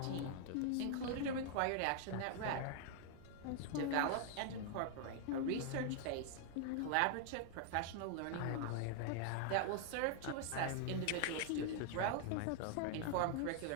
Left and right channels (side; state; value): both; different; correlation 0.00